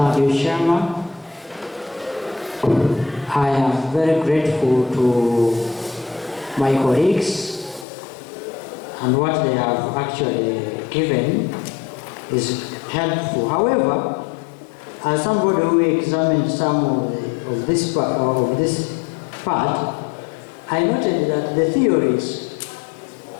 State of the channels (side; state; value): right; drops out; at 7.9 s